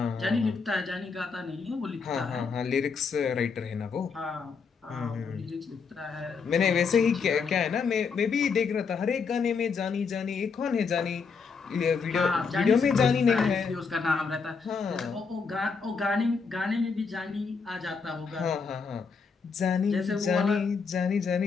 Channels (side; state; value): right; quieter; 5.3 dB